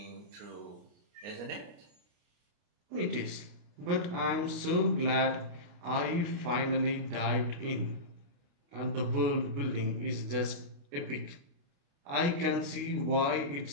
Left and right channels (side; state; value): left; late; 29 ms